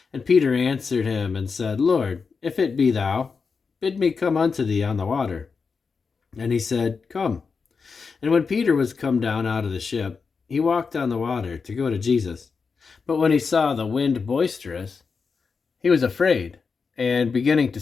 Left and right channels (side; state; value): right; quieter; 5.2 dB